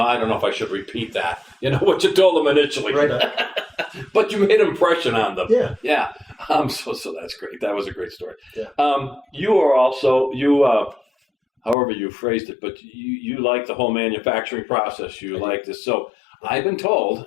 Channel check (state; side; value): drops out; right; at 11.8 s